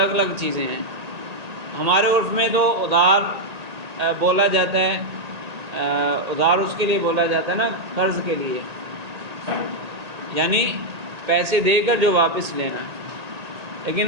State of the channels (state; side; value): late; left; 1.8 ms